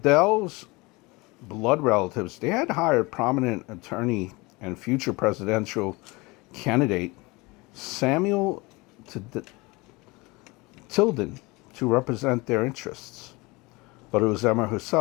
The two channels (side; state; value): right; quieter; 24.4 dB